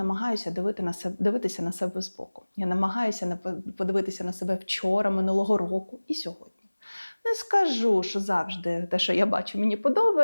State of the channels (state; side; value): inverted; both; correlation -1.00